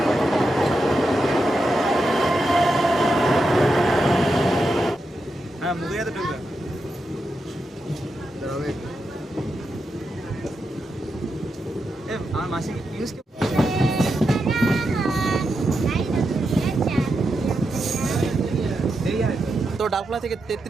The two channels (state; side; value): normal; both; correlation 0.86